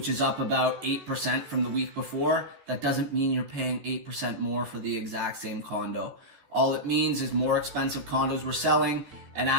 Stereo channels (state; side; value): late; left; 14 ms